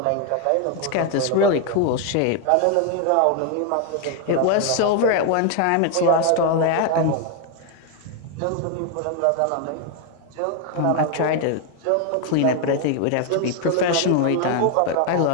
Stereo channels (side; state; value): both; different; correlation 0.01